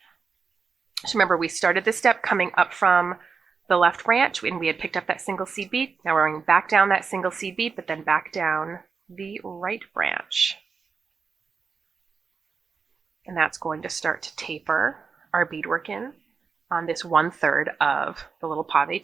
So remember, we started this step coming up from the left branch, and we had picked up that single seed bead. Now we're going back down that single seed bead, but then back down the right branch. And that's going to start to taper our beadwork in on this 1/3 of the little pave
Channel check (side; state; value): left; quieter; 5.3 dB